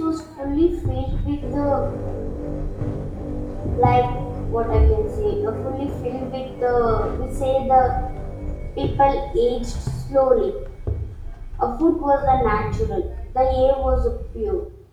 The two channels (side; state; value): both; identical; correlation 1.00